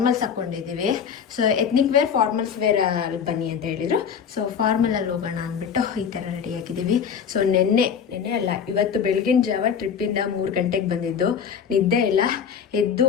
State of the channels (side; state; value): right; quieter; 7.2 dB